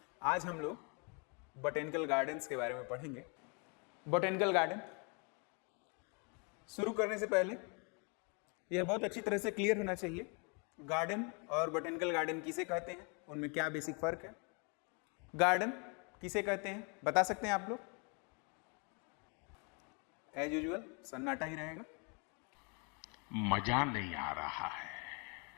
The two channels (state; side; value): quieter; right; 34.5 dB